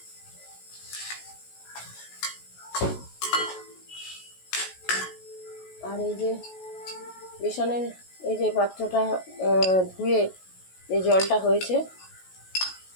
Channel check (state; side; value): late; right; 16 ms